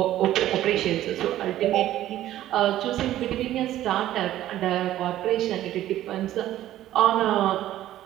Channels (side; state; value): left; quieter; 13.5 dB